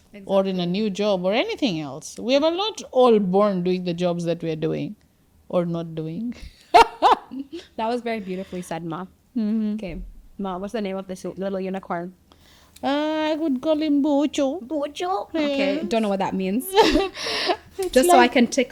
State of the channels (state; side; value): identical; both; correlation 1.00